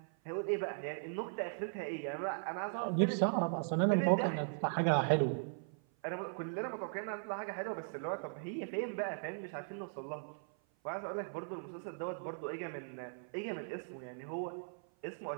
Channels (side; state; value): left; silent; 52 dB below the other